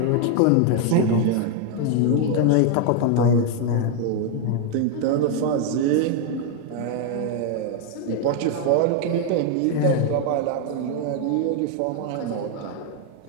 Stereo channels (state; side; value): different; both; correlation 0.01